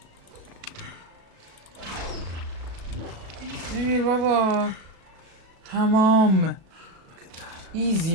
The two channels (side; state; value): left; late; 36 ms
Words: نمیر بابا تمام. ایزی